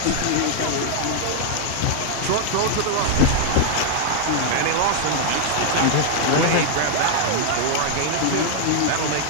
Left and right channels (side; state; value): both; different; correlation 0.00